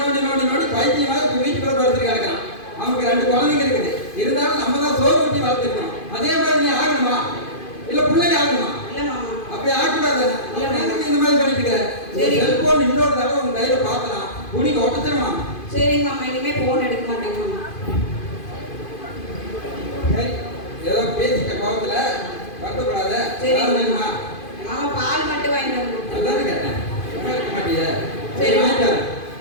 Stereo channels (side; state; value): right; late; 2.5 ms